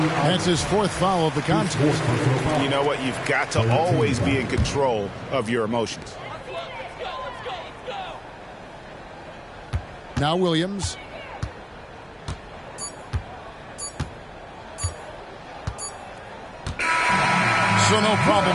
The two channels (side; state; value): both; identical; correlation 1.00